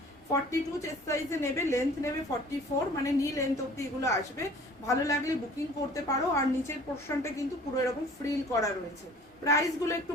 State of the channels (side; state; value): both; normal; correlation 0.49